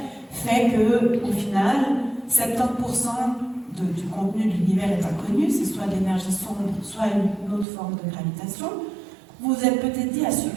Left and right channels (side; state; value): left; drops out; at 7.7 s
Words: fait qu'au final, 70% du contenu de l'univers est inconnu, c'est soit de l'énergie sombre, soit une autre forme de gravitation. Vous vous êtes peut-être dit, ah